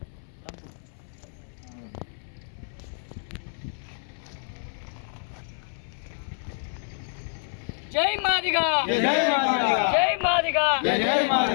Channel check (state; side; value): silent; right; 60 dB below the other